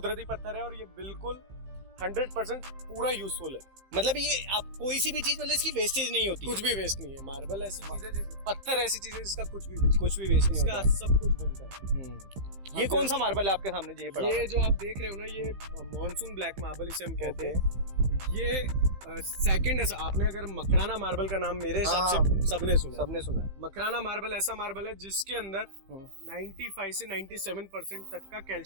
पत्थर है और ये बिल्कुल 100% पूरा यूजफुल है। मतलब ये आप कोई सी भी चीज, मतलब इसकी वेस्टेज नहीं होती, कुछ भी वेस्ट नहीं है। मार्बल ऐसी चीज है, पत्थर ऐसी चीज है जिसका कुछ भी वेस्ट नहीं होता, सब कुछ बनता है। ये कौन सा मार्बल है आपके सामने ये पड़ा? ये जो आप देख रहे हो ना, ये मॉनसून ब्लैक मार्बल इसे हम कहते हैं। ये सेकंड है। आपने अगर मकराना मार्बल का नाम मेरे हिसाब से सबने सुना है। मकराना मार्बल ऐसा मार्बल है जिसके अंदर 95 से 97% तक का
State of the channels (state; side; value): late; left; 15 ms